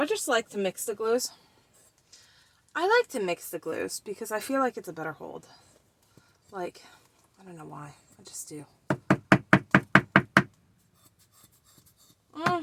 just like to mix the glues. I like to mix the glues because I feel like it's a better hold. Like, I don't know why. I just do.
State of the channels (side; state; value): both; identical; correlation 1.00